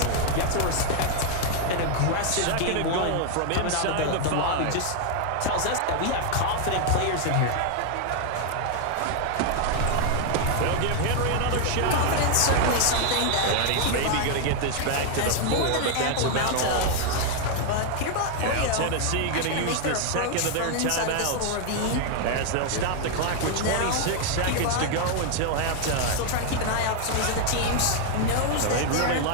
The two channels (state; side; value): different; both; correlation 0.00